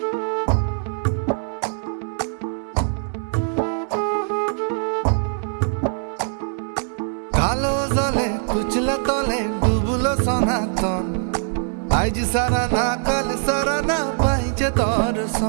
কালো জলে কুচলা তলে ডুবলো সনাতন, আজ সারা না কাল সারা না পাইছে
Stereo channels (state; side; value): silent; left; 64 dB below the other